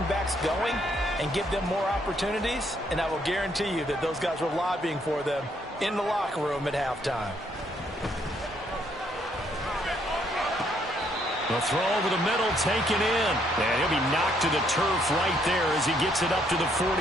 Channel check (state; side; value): normal; both; correlation 0.70